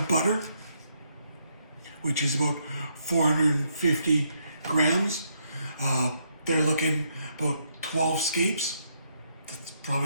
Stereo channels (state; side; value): inverted; both; correlation -0.75